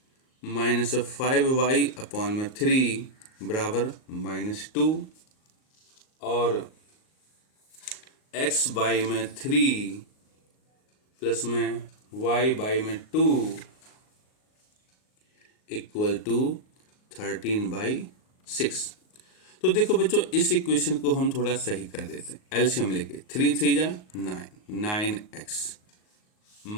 माइनस 5y अपॉन में 3 बराबर -2, और x बाई में 3 प्लस में y बाई में 2 इक्वल टू 13/6। तो देखो बच्चों इस इक्वेशन को हम थोड़ा सही कर देते हैं, एलसीएम लेके 3 3 जा 9x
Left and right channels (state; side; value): late; right; 38 ms